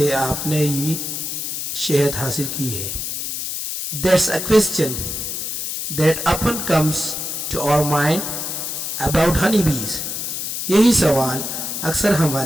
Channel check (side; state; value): left; noise; hiss, 4 dB below the sound